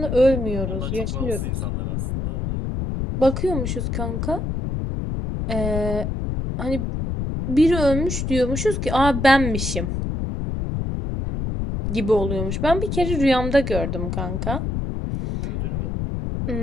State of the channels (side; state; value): left; noise; rumble, 2 dB below the sound